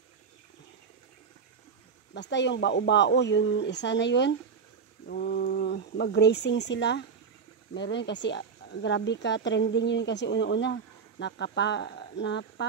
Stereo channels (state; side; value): quieter; left; 5.8 dB